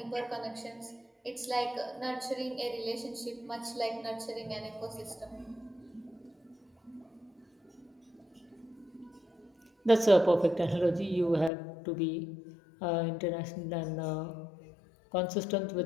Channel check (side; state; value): right; drops out; at 11.5 s